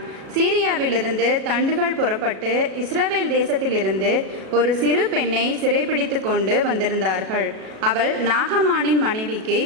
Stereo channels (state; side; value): late; left; 37 ms